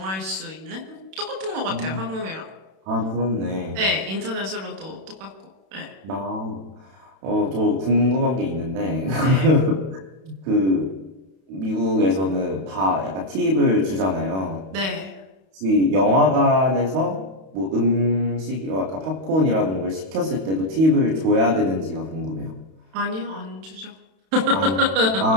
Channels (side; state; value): left; late; 31 ms